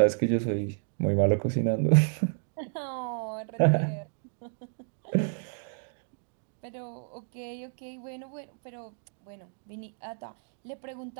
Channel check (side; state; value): left; silent; 57 dB below the other